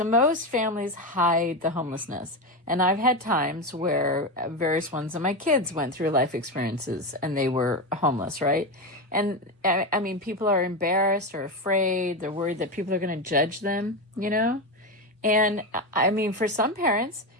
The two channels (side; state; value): both; normal; correlation 0.15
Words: most families hide the homelessness. And I've had times where various ones of my kids went through life experiences and they were homeless, right? And I mean, people are embarrassed or afraid. They're worried that people are going to judge them, And I mean, for some parents,